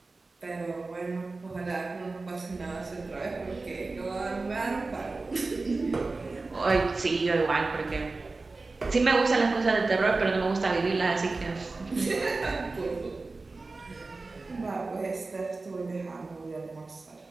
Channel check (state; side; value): quieter; left; 3.6 dB